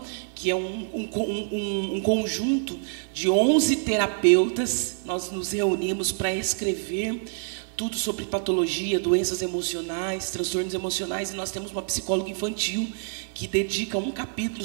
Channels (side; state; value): left; silent; 61 dB below the other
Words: que é um conjunto de 11 terapeutas. Nós nos reunimos para escrever tudo sobre patologia, doenças emocionais, transtornos emocionais, e nós temos uma psicóloga infantil que dedica um capítulo